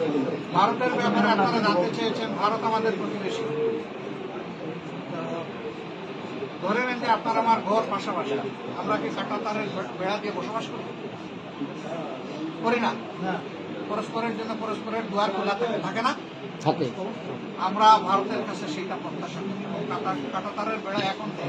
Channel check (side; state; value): both; identical; correlation 1.00